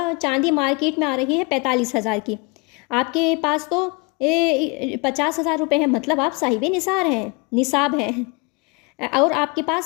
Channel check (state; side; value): quieter; right; 29.0 dB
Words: चांदी मार्केट में आ रही है 45,000 की। आपके पास तो 50,000 रुपये है, मतलब आप साहिब निसाब हैं और आपके